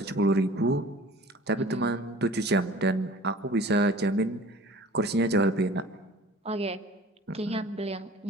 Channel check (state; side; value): normal; both; correlation 0.45